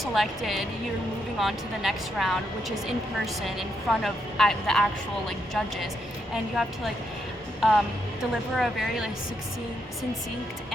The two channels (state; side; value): normal; both; correlation 0.79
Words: you're moving on to the next round, which is in person in front of the actual like judges. And you have to like deliver a very like succinct